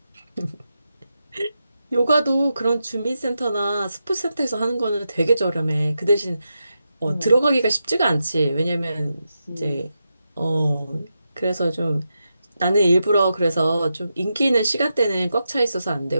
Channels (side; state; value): both; inverted; correlation -0.87